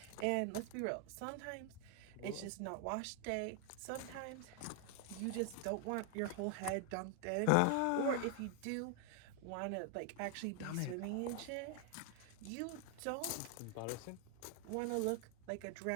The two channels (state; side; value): different; both; correlation 0.00